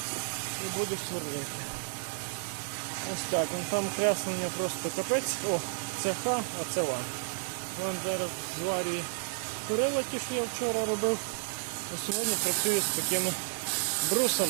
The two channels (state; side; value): silent; left; 57 dB below the other